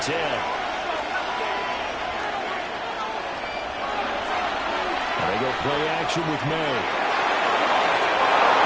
10. They go play action with May.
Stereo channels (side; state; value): both; identical; correlation 1.00